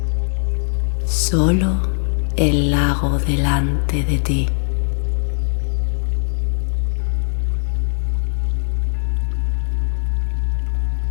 Solo el lago delante de ti.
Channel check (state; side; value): silent; right; 66 dB below the other